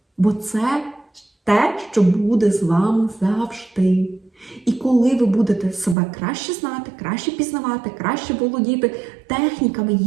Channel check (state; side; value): drops out; left; at 6.0 s